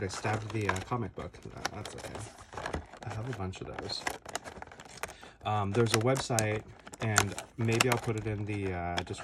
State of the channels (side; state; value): both; identical; correlation 1.00